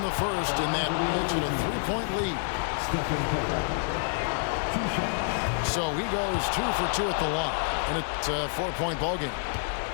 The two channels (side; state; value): right; silent; 59 dB below the other